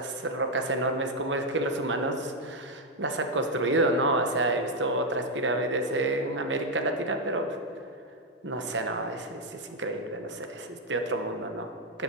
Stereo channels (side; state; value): both; normal; correlation 0.01